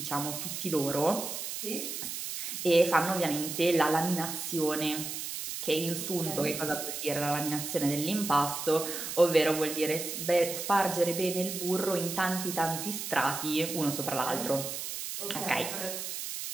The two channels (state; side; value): noise; right; hiss, 5 dB below the sound